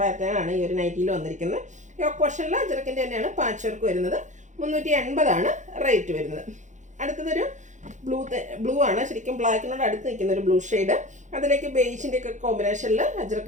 ആണ് ഈ ഒരു നൈറ്റിയിൽ വന്നിരിക്കുന്നത്. യോക്ക് പോർഷനിൽ അഞ്ചരക്കിൻ്റെ തന്നെയാണ് പാച്ച് വർക്ക് വരുന്നത്. 380 റേറ്റ് വരുന്നത്. അടുത്തതൊരു ബ്ലൂ ആണ്. ശരിക്കും ബ്ലാക്കിനോട് അടുത്ത് നിൽക്കുന്ന ഒരു ബ്ലൂ ഷെയ്ഡ്. അതിലേക്ക് ബേജിൻ്റെ ഒക്കെ കോമ്പിനേഷനിൽ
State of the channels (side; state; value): left; late; 0.35 ms